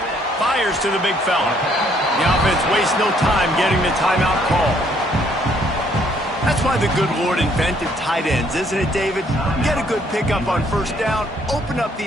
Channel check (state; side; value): normal; both; correlation 0.66